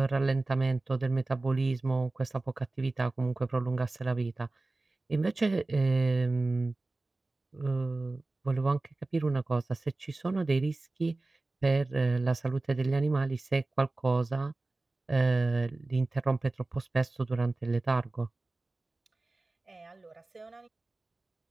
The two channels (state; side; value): quieter; left; 3.1 dB